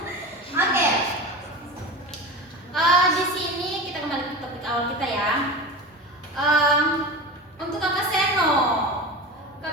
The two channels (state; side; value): normal; both; correlation 0.28